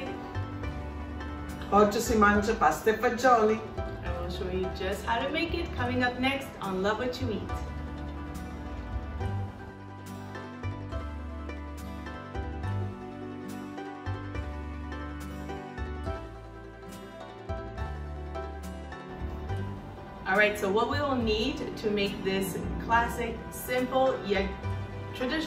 Oggi si mangia pasta e fagioli. I will show you just how to make it coming up next on Love What You Eat. Alright, so what we will need to make this classic, simple, yet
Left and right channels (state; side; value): identical; both; correlation 1.00